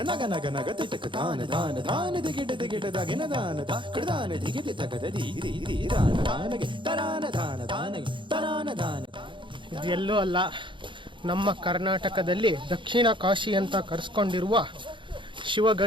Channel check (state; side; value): late; left; 0.24 ms